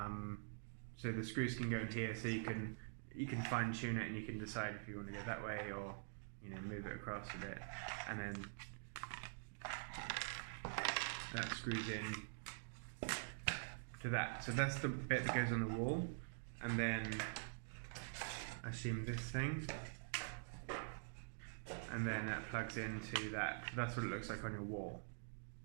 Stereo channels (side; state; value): left; silent; digital silence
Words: So the screws can go in here, so you can fine tune it, and you can decide if you want to go that way or move it across a bit, and then that screws in to that. So that's the bit that goes on the wall, and then I assume this thing, and then that plugs into that. That's what it looks like on your wall.